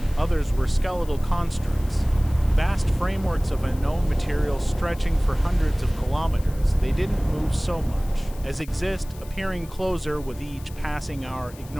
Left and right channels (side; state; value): left; noise; hiss, 21 dB below the sound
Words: Others were skeletal constructs, vast frameworks of unknown material stretching for hundreds of kilometers. They didn't move so much as exist, appearing closer with each passing hour,